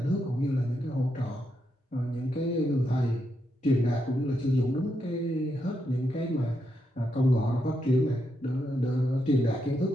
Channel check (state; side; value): normal; both; correlation 0.82